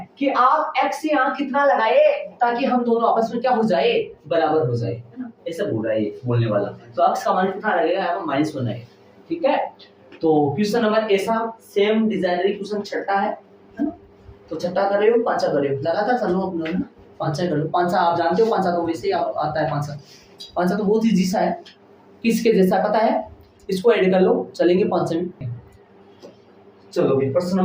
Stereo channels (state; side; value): identical; both; correlation 1.00